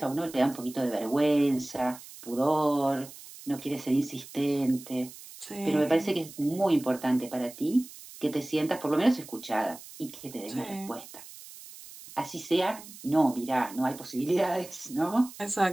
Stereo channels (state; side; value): noise; right; hiss, 17 dB below the sound